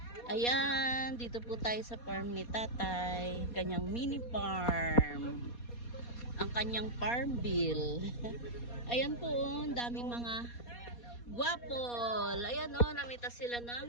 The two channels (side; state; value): right; late; 4.2 ms